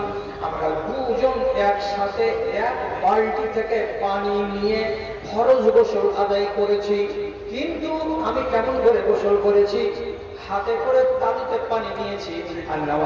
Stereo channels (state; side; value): identical; both; correlation 1.00